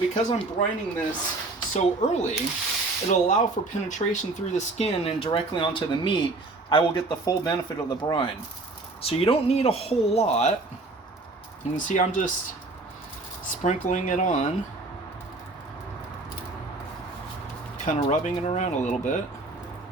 I'm brining this so early, it'll allow for penetration through the skin and directly onto the meat. I will get the full benefit of the brine. So you don't need a whole lot. You can see I'm just sprinkling it on, kind of rubbing it around a little bit.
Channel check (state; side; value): quieter; left; 3.2 dB